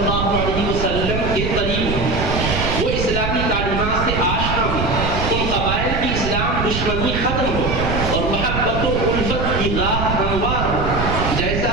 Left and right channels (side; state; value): right; noise; rumble, 2 dB below the sound